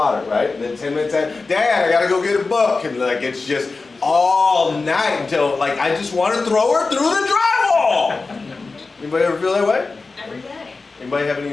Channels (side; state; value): right; quieter; 3.9 dB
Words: right? And then 10 minutes after, Dad, I gotta go get a book. And like, it's just all night until like, I just want to throw her through the drywall. Anybody ever feel that way? Every day. Anybody have any